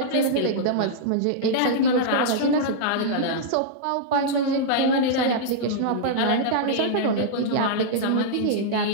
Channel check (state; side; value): different; both; correlation -0.02